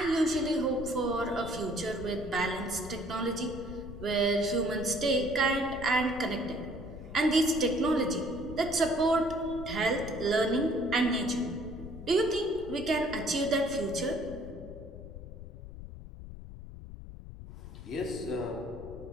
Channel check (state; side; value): noise; left; rumble, 13 dB below the sound